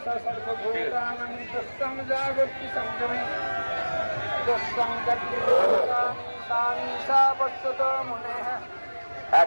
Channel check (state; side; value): inverted; both; correlation -1.00